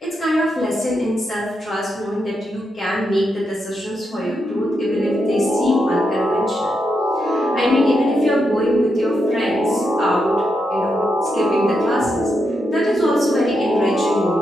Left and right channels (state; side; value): normal; both; correlation 0.83